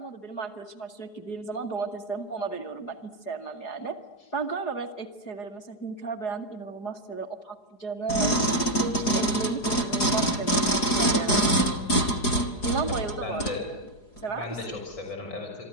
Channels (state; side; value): late; right; 4.8 ms